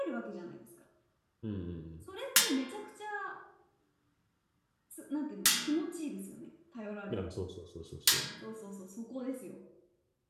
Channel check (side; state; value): both; identical; correlation 1.00